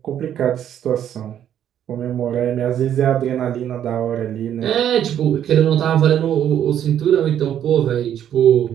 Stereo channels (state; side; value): quieter; left; 10.2 dB